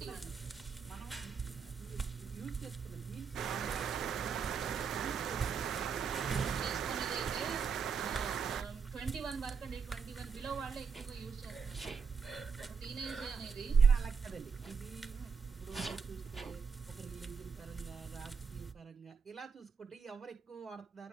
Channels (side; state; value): left; quieter; 5.9 dB